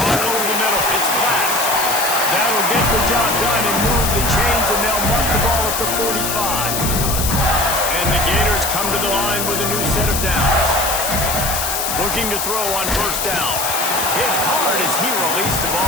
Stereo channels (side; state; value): left; noise; hiss, 2 dB below the sound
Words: over the middle, it's Glass. That'll get the job done and move the chains, and they'll mark the ball at the 45. And the Gators come to the line with a new set of downs. Looking to throw on 1st down. Hit hard as he released the